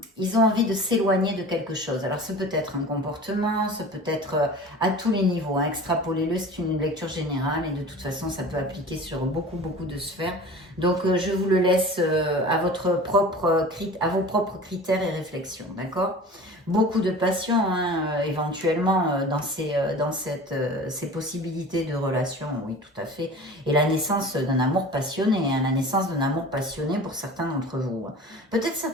ils ont envie de s'éloigner de quelque chose. Alors ça peut être un comportement, ça peut être à tous les niveaux. Hein. Extrapolez-le, c'est une lecture générale et de toute façon ça peut appliquer sur beaucoup de sphères. Donc je vous le laisse à vos propres critères et réflexions, d'accord? Beaucoup de passion, hein, éventuellement, dans ces possibilités de relation, oui, tout à fait. Et la naissance d'un amour passionné, hein, la naissance d'un amour passionné pour certains d'entre vous. Peut-être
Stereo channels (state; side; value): normal; both; correlation 0.39